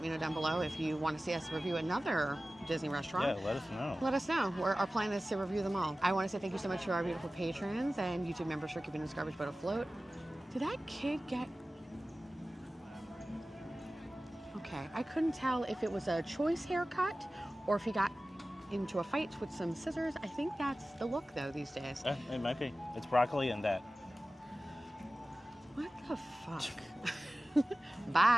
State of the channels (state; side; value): normal; both; correlation 0.96